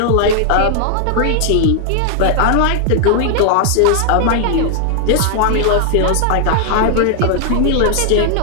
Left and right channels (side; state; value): both; different; correlation 0.00